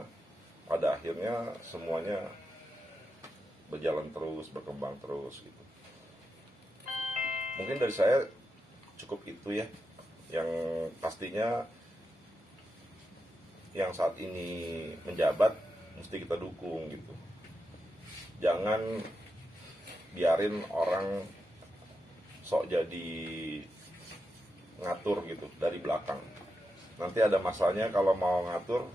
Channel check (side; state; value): both; normal; correlation 0.87